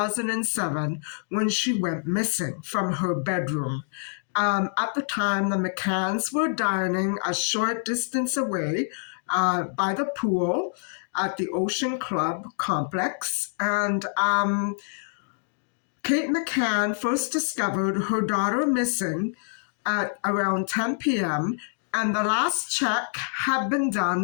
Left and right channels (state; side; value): silent; right; digital silence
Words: when she went missing from her bedroom. At the time, the McCanns were dining a short distance away by the pool at the Ocean Club complex. And Kate McCann first discovered her daughter missing at around 10 p.m. and the last check had been